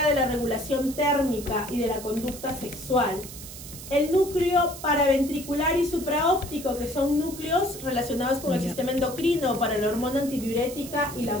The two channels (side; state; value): right; noise; hiss, 13 dB below the sound